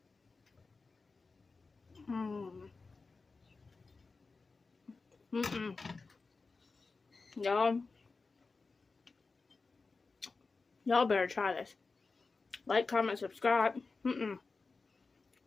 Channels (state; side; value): quieter; right; 4.1 dB